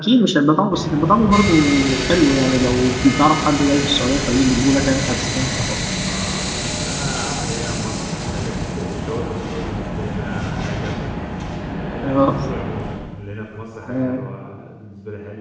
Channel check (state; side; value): identical; both; correlation 1.00